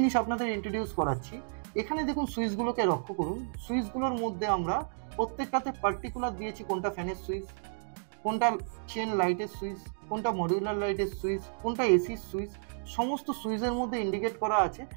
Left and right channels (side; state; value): left; silent; digital silence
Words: আপনাদের ইন্ট্রোডিউস করাচ্ছি, এখানে দেখুন সুইচগুলোকে লক্ষ্য করুন। সুইচগুলোর মধ্যে আমরা প্রত্যেকটাতে পার্টিকুলার দিয়েছি, কোনটা ফ্যানের সুইচ, কোনটা চেন লাইটের সুইচ, কোনটা মডিউলার লাইটের সুইচ, কোনটা এসির সুইচ, সমস্ত সুইচের মধ্যে ইন্ডিকেট করা আছে